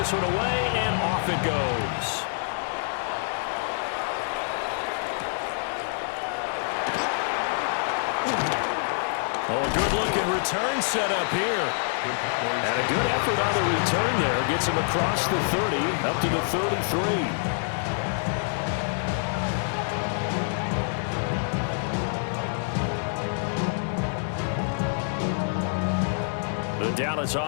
one away, and off it goes. Oh, a good-looking return set up here. And a good effort on the return there. Gets him across the 30, up to the 33. The Dallas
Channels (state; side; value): silent; right; digital silence